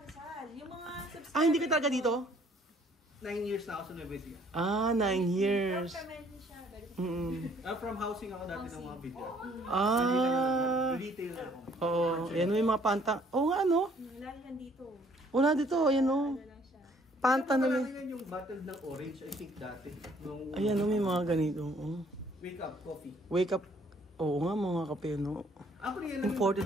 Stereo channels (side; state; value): both; normal; correlation 0.61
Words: Rizal. Yung mga subscribers. Hindi ka talaga dito? 9 years na ako sa Nueva Ecija. 9 years. Permanent siya. From housing ako dati ng mga video. Retail ako. Oo. Yan may mga panta. Oo nga, ano? Lagi yan dito. Wala dito, ayan o. Ano lang siya. Panta na may. Yan yung bottle ng orange, I think dati. Nung Ayan o, may mga ganito. Oh. wake up coffee. Wake up. Oo nga, mga kape, no? Ako rin yan.